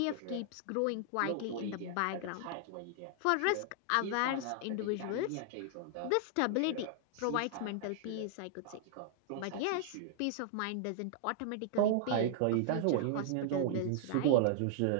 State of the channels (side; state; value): both; different; correlation -0.01